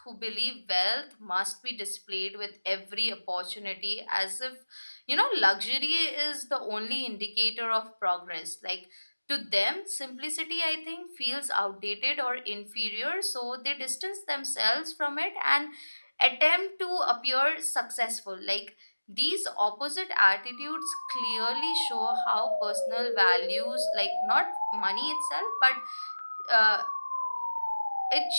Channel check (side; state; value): both; inverted; correlation -1.00